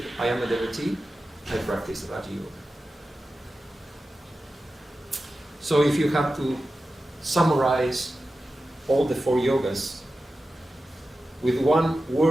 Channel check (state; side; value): normal; both; correlation 0.93